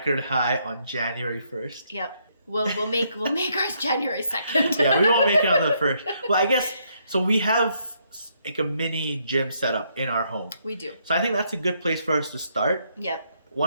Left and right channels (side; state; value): both; inverted; correlation -0.73